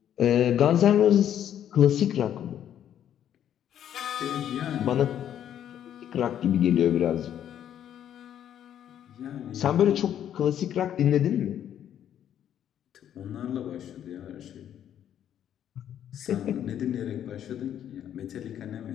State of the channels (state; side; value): quieter; right; 10.2 dB